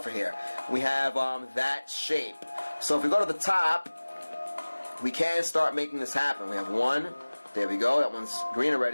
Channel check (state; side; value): inverted; both; correlation -1.00